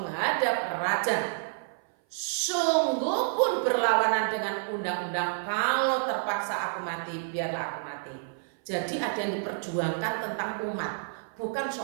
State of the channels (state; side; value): silent; left; 56 dB below the other